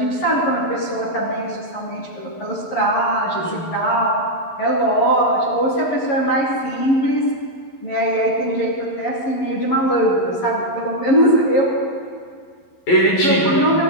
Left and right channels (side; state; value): right; late; 11 ms